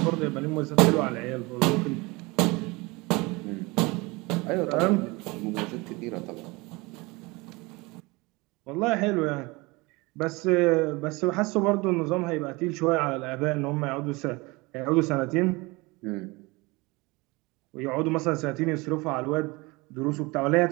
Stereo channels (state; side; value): quieter; left; 24.4 dB